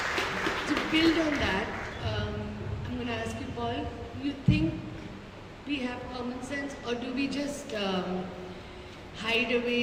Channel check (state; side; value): identical; both; correlation 1.00